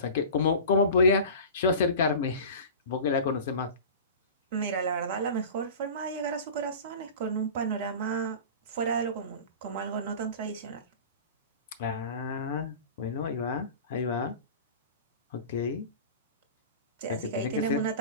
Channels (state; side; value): inverted; both; correlation -0.35